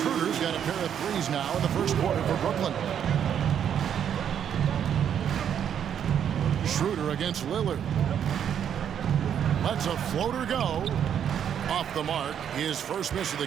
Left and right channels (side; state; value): left; quieter; 8.9 dB